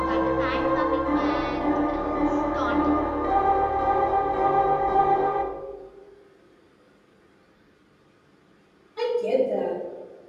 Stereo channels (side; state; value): both; identical; correlation 1.00